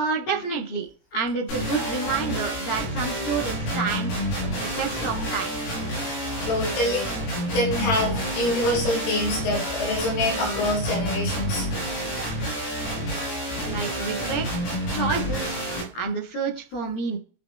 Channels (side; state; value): right; late; 17 ms